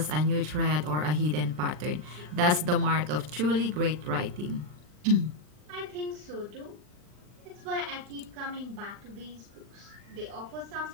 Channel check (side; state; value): left; late; 39 ms